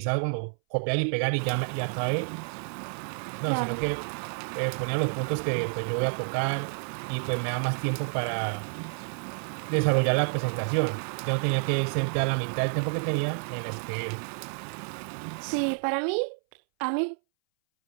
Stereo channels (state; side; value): silent; left; 59 dB below the other